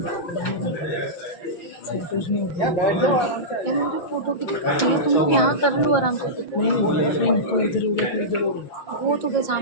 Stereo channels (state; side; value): late; right; 5.7 ms